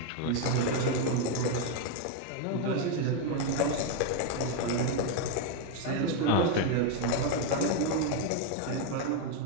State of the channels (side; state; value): both; different; correlation 0.01